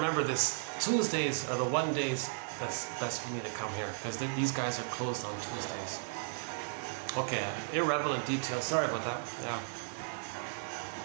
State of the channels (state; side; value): silent; left; digital silence